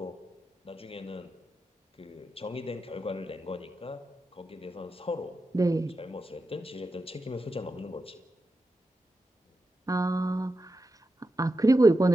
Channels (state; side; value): normal; both; correlation 0.89